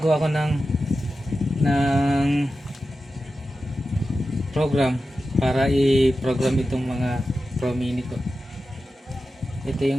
ko ng program para i-program itong mga Pro Mini ko. Ito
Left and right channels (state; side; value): normal; both; correlation 0.92